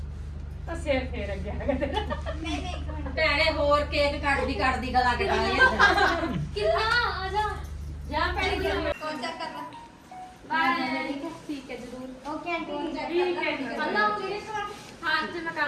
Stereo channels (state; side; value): identical; both; correlation 1.00